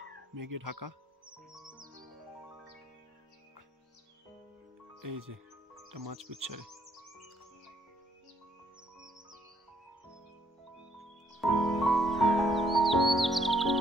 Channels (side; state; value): both; normal; correlation 0.69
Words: মেঘে ঢাকা। এই যে এটা মাছপুচ্ছারে।